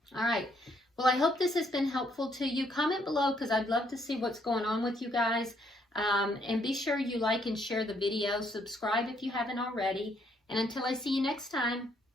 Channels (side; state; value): both; normal; correlation 0.70